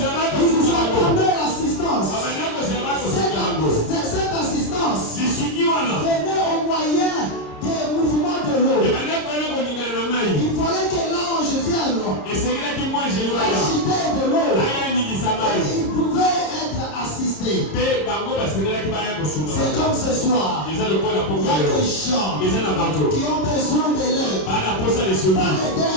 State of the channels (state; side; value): late; right; 30 ms